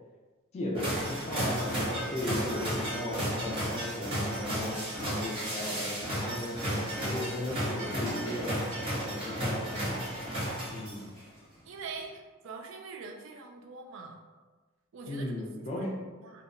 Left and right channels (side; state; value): both; normal; correlation 0.41